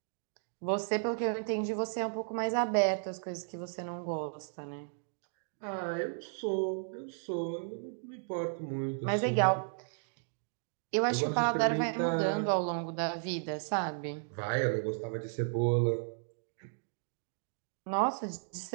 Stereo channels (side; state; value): left; silent; digital silence